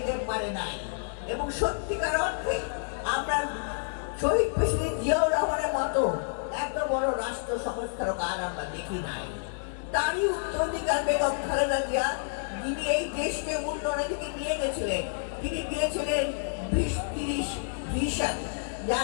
পারে নাই। এবং সত্যিকার অর্থে আমরা শহীদ প্রেসিডেন্ট জিয়াউর রহমানের মতো এত বড় রাষ্ট্র সংস্কারক আর আমরা দেখি নাই। তারই উত্তরাধিকার বেগম খালেদা জিয়া, যিনি এই দেশকে উন্নয়নের দিকে নিয়ে গেছিলেন, তিনি দিয়েছিলেন 20-30 ভিশন,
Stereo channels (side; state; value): right; silent; digital silence